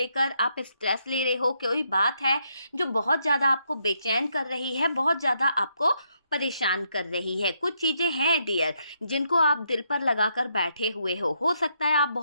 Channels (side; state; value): both; inverted; correlation -0.77